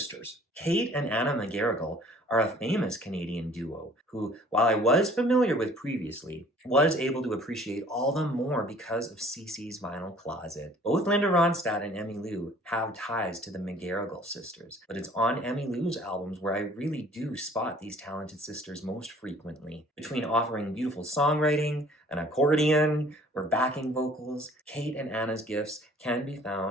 Kate and Anna McGarrigle are a famous Canadian duo who, while I was familiar with previously, was able to appreciate all the more because of CC's Vinyl Closet. Both Linda Ronstadt and Emmylou have ties to the McGarrigle sisters, but it's on Emmylou's albums where I really do spot these talented sisters most frequently. Between offering beautiful songwriting, an accordion, or backing vocals, Kate and Anna's gifts can be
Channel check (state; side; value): normal; both; correlation 0.53